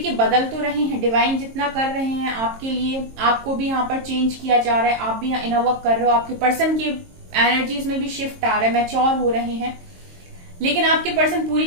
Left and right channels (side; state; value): left; late; 22 ms